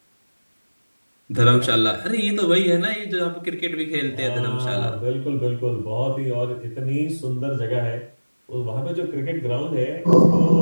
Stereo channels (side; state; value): both; inverted; correlation -1.00